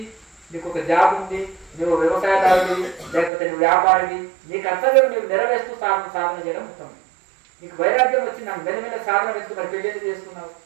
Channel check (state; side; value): drops out; left; at 3.3 s